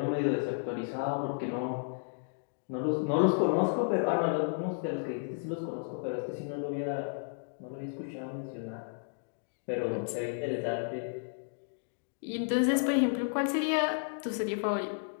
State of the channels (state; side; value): silent; right; digital silence